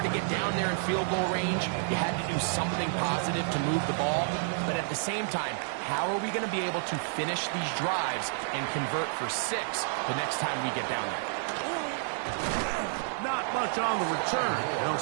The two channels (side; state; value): left; silent; digital silence